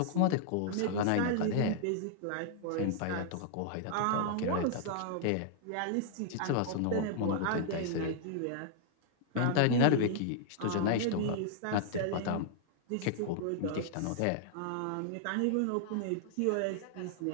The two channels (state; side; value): different; both; correlation -0.01